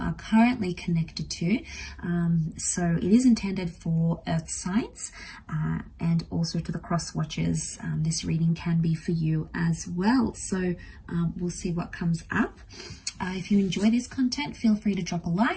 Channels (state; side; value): identical; both; correlation 1.00